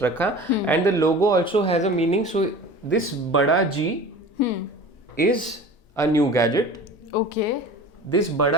रखा. And the logo also has a meaning. So this बड़ा G is a new gadget. Okay. This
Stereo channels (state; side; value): normal; both; correlation 0.38